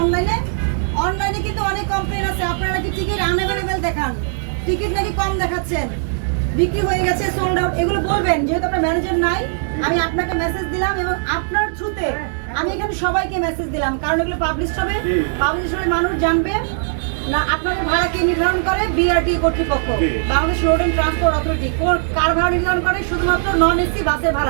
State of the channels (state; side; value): silent; left; digital silence